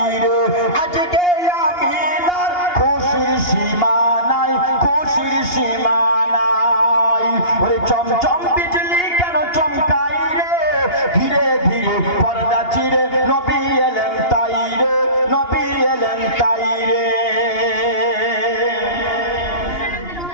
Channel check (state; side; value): late; right; 2.8 ms